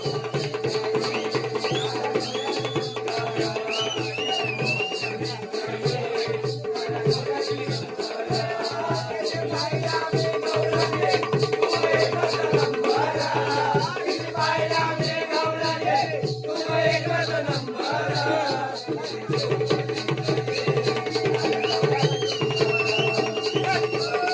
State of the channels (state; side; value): identical; both; correlation 1.00